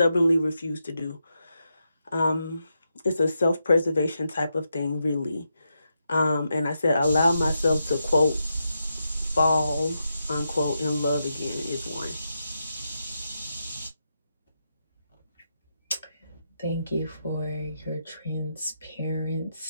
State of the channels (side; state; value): both; inverted; correlation -0.85